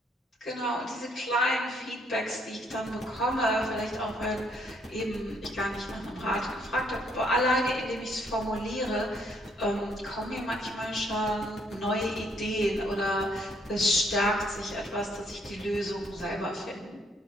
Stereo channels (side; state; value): both; normal; correlation 0.68